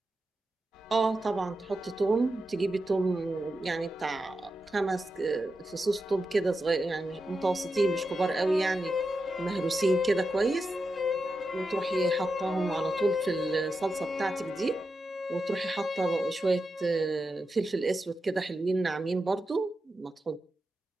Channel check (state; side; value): normal; both; correlation 0.89